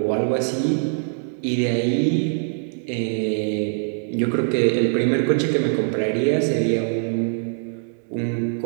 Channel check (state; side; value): silent; left; digital silence